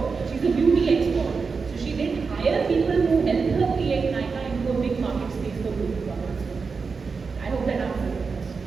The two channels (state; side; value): quieter; left; 5.0 dB